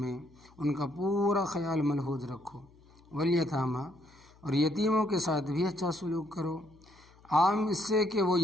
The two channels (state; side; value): noise; left; hum, 27 dB below the sound